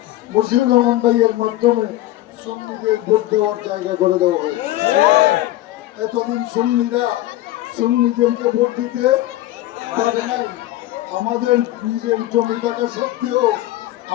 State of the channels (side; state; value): right; quieter; 15.6 dB